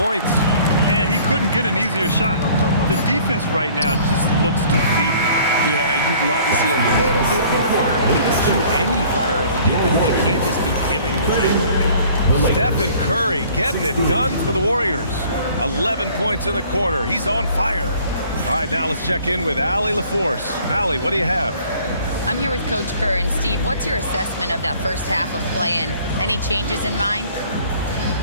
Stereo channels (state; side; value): inverted; both; correlation -0.54